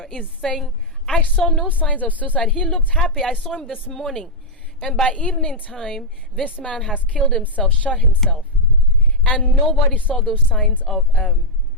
is saying, I saw no signs of suicide. He looked happy. I saw him this morning. And by evening time, this man has killed himself, shot himself. And nobody saw those signs of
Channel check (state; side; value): normal; both; correlation -0.04